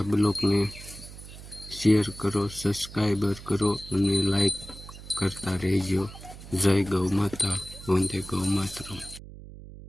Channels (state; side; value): noise; right; hum, 15 dB below the sound